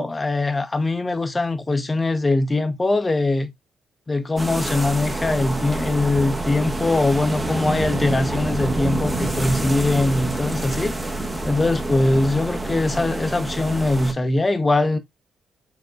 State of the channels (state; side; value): normal; both; correlation 0.94